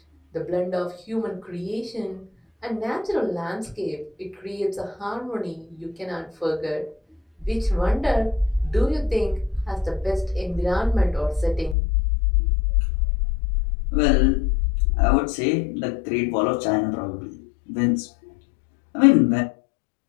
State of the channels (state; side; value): drops out; right; at 11.8 s